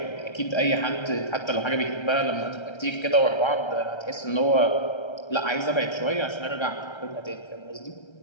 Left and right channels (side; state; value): right; late; 1.3 ms